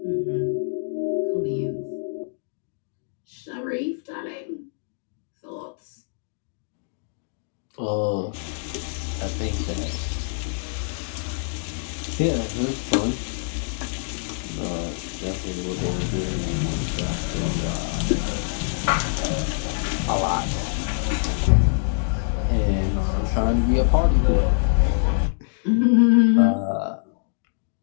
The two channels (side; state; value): right; silent; digital silence